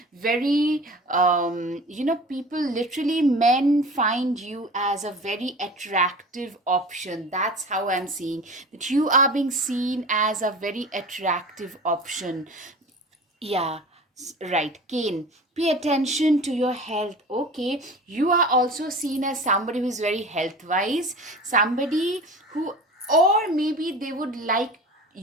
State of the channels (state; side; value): normal; both; correlation 0.37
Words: very people, literally men find you as a very attractive option. That's how I'm seeing that you are being seen as a very attractive option. Yeah, right. Kane, pay attention to your health. Okay, you are also seen as somebody who is very health wise, somebody who, or maybe they would like